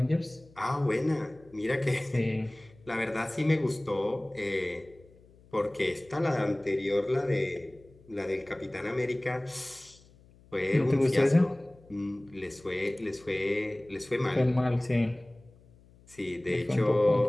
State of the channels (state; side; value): noise; left; hum, 26 dB below the sound